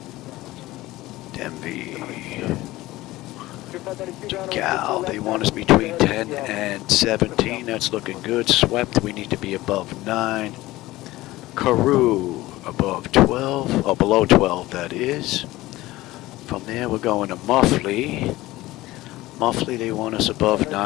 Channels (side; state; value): right; quieter; 17.8 dB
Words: DMV. Cal, they want us between 10 and 17. That's looking good. Swept, we need to be above 9. Karoo, above 12, or below 12, that is. From there, we're going to Muffley. Muffley, they want us above